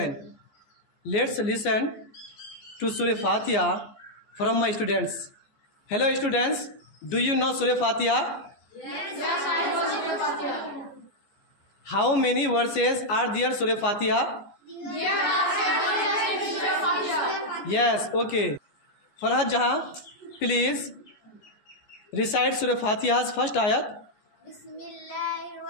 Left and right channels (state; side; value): late; right; 14 ms